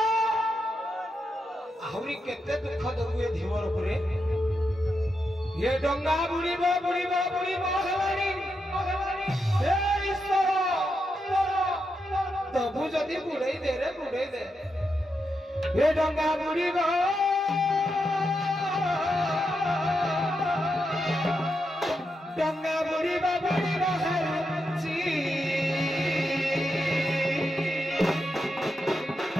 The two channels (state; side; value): normal; both; correlation 0.85